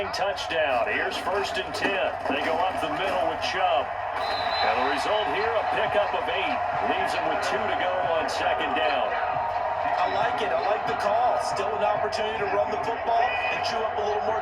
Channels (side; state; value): both; identical; correlation 1.00